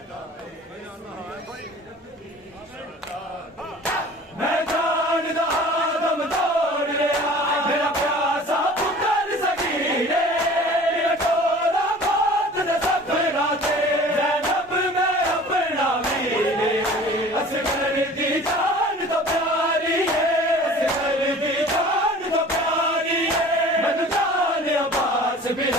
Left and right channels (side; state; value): both; normal; correlation 0.45